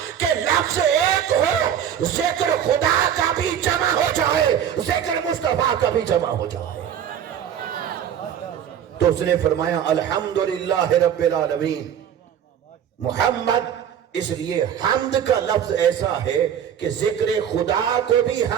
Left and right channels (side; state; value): left; quieter; 9.2 dB